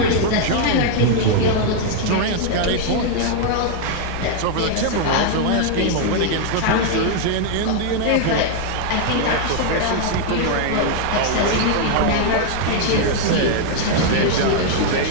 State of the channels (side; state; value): both; different; correlation 0.00